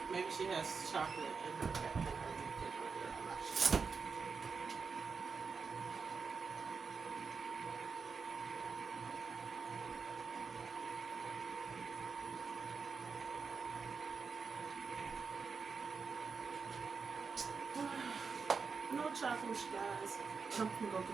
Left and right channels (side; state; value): left; quieter; 5.3 dB